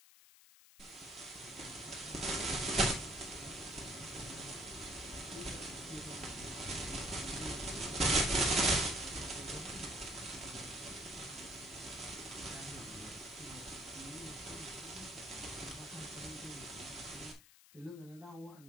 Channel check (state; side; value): noise; left; hiss, 22 dB below the sound